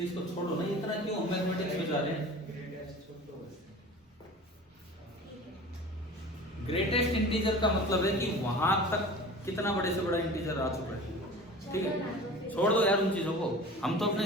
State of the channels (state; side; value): normal; both; correlation 0.39